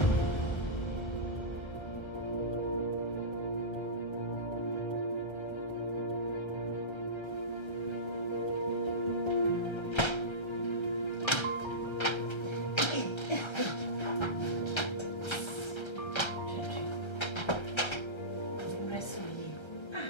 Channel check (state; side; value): late; right; 1.3 ms